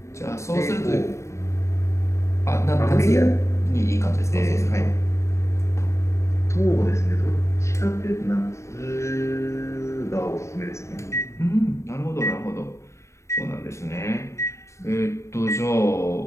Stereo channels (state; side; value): late; right; 0.14 ms